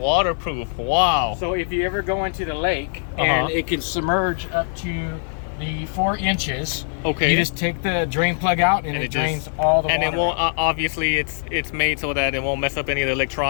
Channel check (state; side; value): silent; right; digital silence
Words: Wow. So if you ever go into the lake and it can submerge up to the 4 inches, Okay. you just take the drain plug out and it drains all the water. And it won't. Obviously, it's made so that it won't mess up any of the